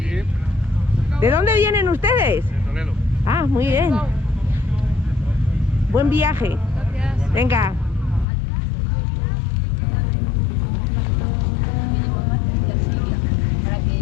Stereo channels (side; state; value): right; drops out; at 8.2 s